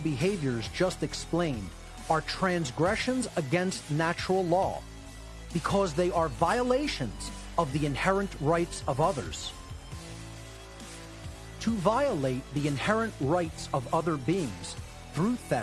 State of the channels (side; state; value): both; identical; correlation 1.00